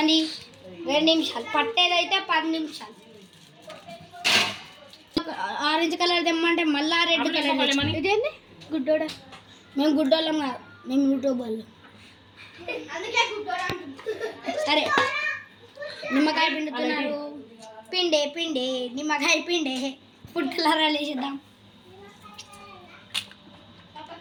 2 నిమిషాలు పట్టేదైతే 10 నిమిషాలు. ఆరెంజ్ కలర్ తెమ్మంటే మళ్ళా రెడ్ కలర్. ఇదేంది గుడ్డోడా? మేము గుడ్డోళ్ళం కాదు, మేము యూట్యూబ్ వాళ్ళం. సరే నిమ్మకాయ పిండుతున్నారు. పిండే పిండే నిమ్మకాయ పిండే. ఫుడ్ కలర్ వేసేద్దాం.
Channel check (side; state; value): both; identical; correlation 1.00